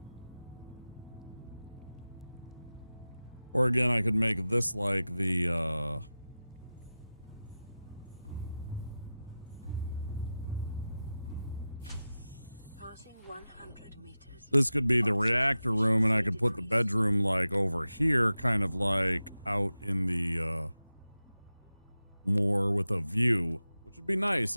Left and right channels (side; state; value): both; inverted; correlation -0.94